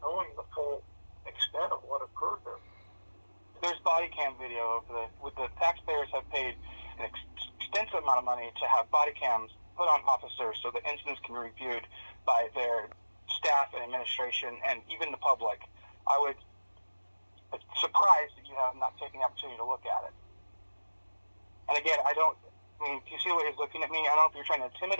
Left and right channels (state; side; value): inverted; both; correlation -1.00